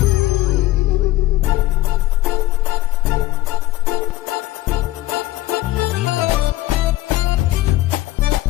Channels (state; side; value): quieter; right; 16.6 dB